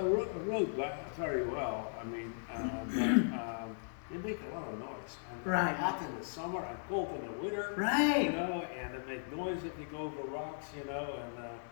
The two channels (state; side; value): silent; right; digital silence